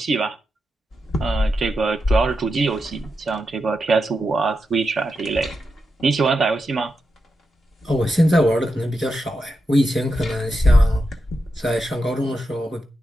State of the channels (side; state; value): both; normal; correlation 0.87